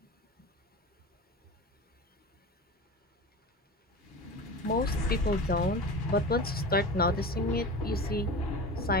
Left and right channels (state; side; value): normal; both; correlation 0.31